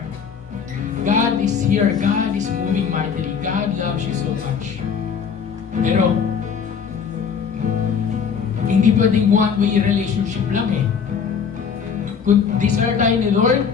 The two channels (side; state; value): right; quieter; 6.6 dB